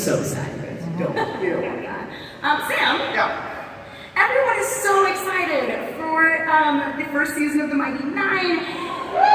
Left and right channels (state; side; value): identical; both; correlation 1.00